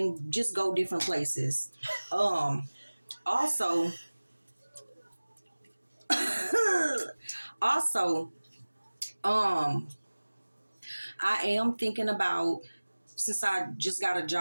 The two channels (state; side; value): inverted; both; correlation -1.00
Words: just go different places. Also, also, I am thinking about, since I just got a